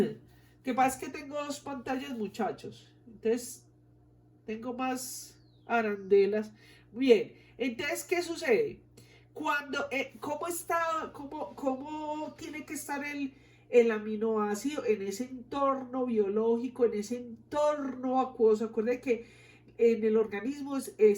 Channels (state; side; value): identical; both; correlation 1.00